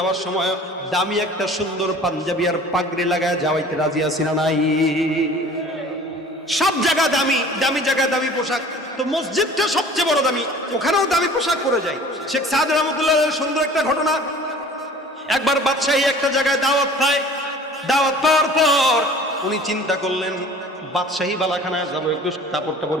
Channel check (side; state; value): both; normal; correlation 0.46